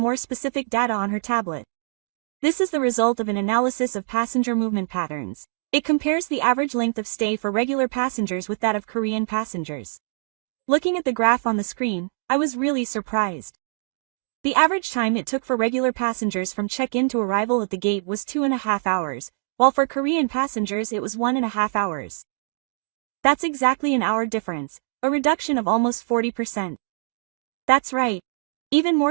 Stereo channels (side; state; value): left; silent; digital silence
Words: specific data on her tablet. This is the result of an analysis of passenger movement patterns. It compares the average length of stay for regular passengers with that of Korean passengers. Looking at the graph on the screen, I was really surprised. The average time it took for regular passengers from check-in to arrival at the gate was 2.5 hours, while for Korean passengers it was 1.5 hours. That's exactly an hour difference, a reduction of almost 40%. That's right. Even